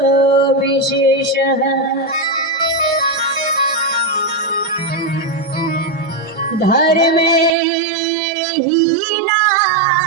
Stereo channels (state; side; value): drops out; left; at 7.6 s